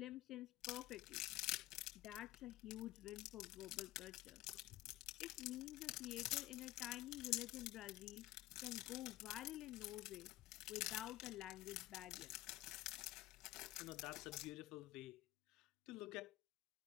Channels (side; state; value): right; quieter; 17.1 dB